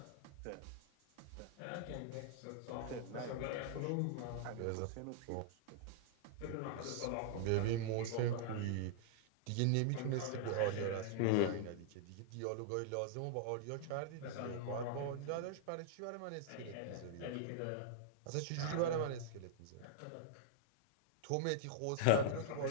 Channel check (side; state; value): both; different; correlation -0.01